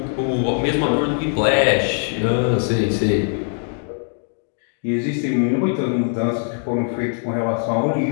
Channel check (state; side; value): silent; right; 56 dB below the other